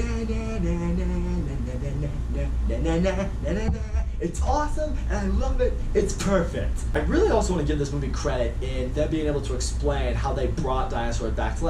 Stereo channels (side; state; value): both; identical; correlation 1.00